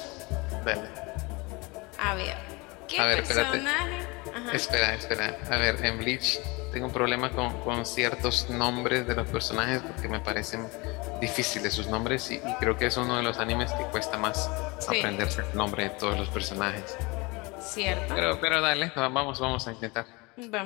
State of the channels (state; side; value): quieter; right; 25.7 dB